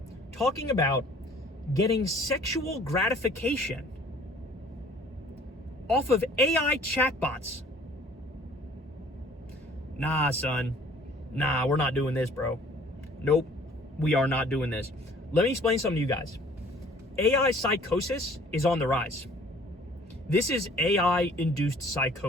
talking about getting sexual gratification off of AI chatbots. Nah, son. Nah, we're not doing this, bro. Nope, we are not doing this. Let me explain something to you guys. AI psychosis is on the rise. This is AI-induced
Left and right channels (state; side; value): normal; both; correlation 0.54